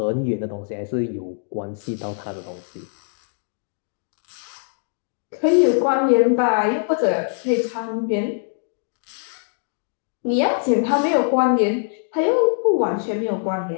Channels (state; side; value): silent; right; digital silence